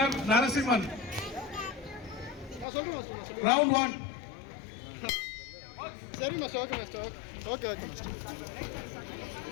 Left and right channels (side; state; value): right; drops out; at 2.7 s